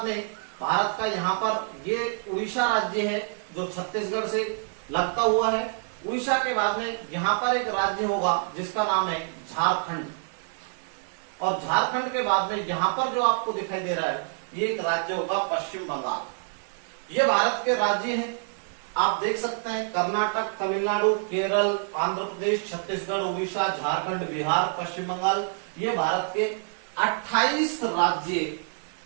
में भारत का यहां पर ये उड़ीसा राज्य है जो छत्तीसगढ़ से लगता हुआ है। उड़ीसा के बाद में यहां पर एक राज्य होगा जिसका नाम है झारखंड, और झारखंड के बाद में यहां पर जो आपको दिखाई दे रहा है ये एक राज्य होगा पश्चिम बंगाल। ये भारत के राज्य हैं, आप देख सकते हैं कर्नाटक, तमिलनाडु, केरल, आंध्र प्रदेश, छत्तीसगढ़, उड़ीसा, झारखंड, बिहार, पश्चिम बंगाल। ये भारत के 28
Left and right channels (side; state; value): left; silent; 60 dB below the other